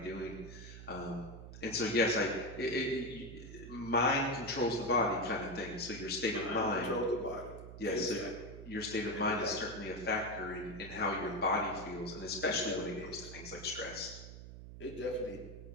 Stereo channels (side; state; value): right; noise; hum, 12 dB below the sound